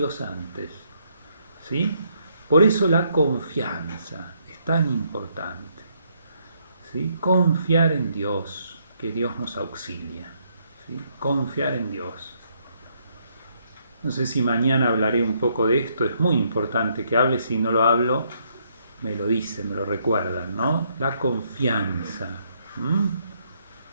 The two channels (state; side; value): inverted; both; correlation -0.72